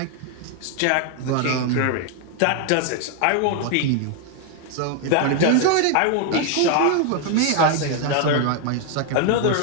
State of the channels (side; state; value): both; different; correlation 0.00